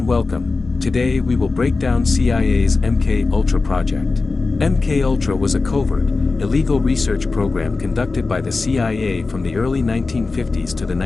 welcome. Today we will break down CIA's MK Ultra project. MK Ultra was a covert, illegal research program conducted by the CIA from the early 1950s to the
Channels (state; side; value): quieter; right; 3.9 dB